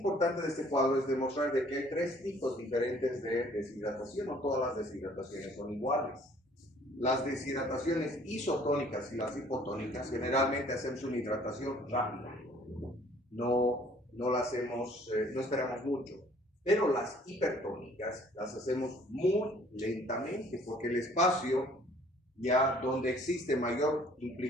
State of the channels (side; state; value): both; normal; correlation 0.57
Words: de este cuadro es demostrar de que hay tres tipos diferentes de deshidratación. No todas las deshidrataciones son iguales. Las deshidrataciones isotónicas y las hipotónicas generalmente hacemos una hidratación rápida. No la hacemos, no esperamos mucho. Pero las hipertónicas las hacemos muy lentamente porque el espacio ya donde existe mayor